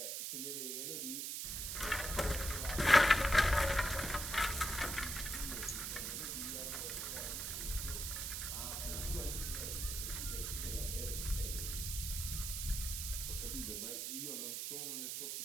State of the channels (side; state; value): right; noise; hiss, 3 dB below the sound